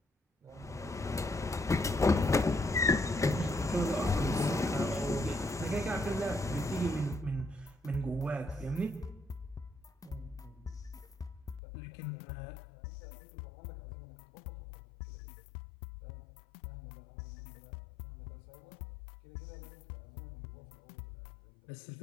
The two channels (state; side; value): drops out; right; at 11.6 s